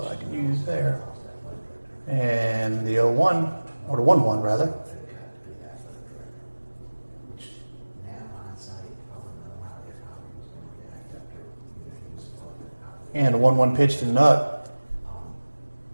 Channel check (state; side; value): inverted; both; correlation -1.00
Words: I can use there. And the 0-1, or the 1-1 rather. And a 1-1 pitch to Nuck.